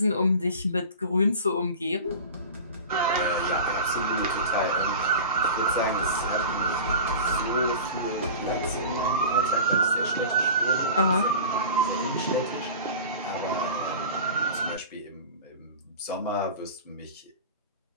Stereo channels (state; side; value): inverted; both; correlation -0.35